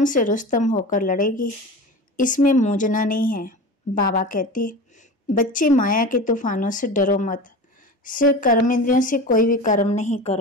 से रुस्तम होकर लड़ेगी, इसमें मूंझना नहीं है। बाबा कहते बच्चे, माया के तूफानों से डरो मत। सिर्फ कर्म इंद्रियों से कोई भी कर्म नहीं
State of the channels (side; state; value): both; normal; correlation 0.31